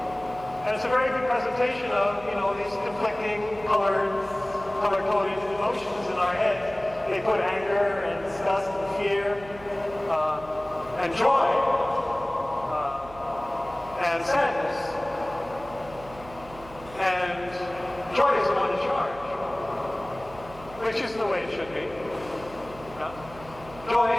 And it's a very good presentation of, these conflicting color-coded emotions in our heads. They put anger and disgust and fear and joy and sadness. And joy is the one in charge, which is the way it should be. Yeah?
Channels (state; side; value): noise; right; hum, 18 dB below the sound